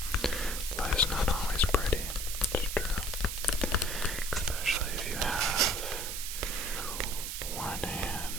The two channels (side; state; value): right; noise; hiss, 5 dB below the sound